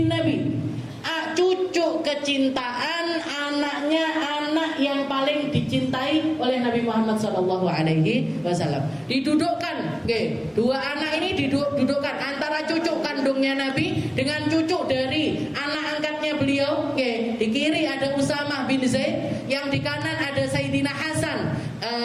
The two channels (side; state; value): both; identical; correlation 1.00